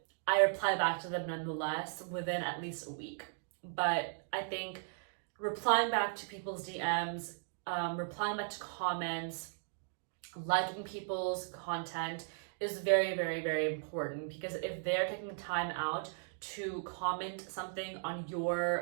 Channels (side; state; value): left; silent; digital silence